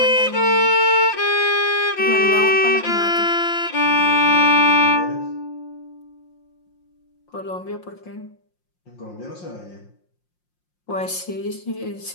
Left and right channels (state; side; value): late; right; 5.6 ms